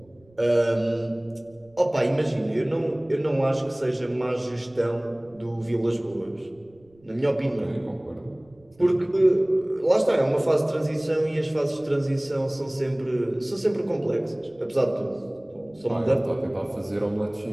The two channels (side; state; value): right; noise; rumble, 30 dB below the sound